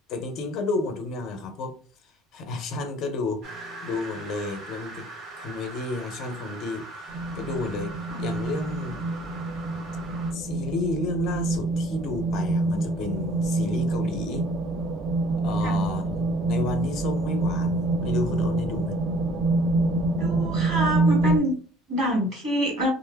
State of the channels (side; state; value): both; normal; correlation 0.56